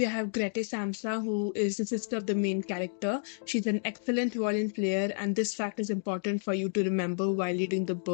have Grete Samsa, who is the sister of the main character. She's an excellent violin player, and this fact is important for you to remember while reading the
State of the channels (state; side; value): silent; right; digital silence